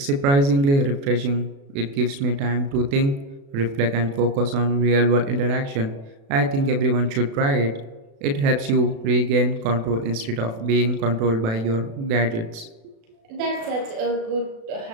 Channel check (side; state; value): left; late; 36 ms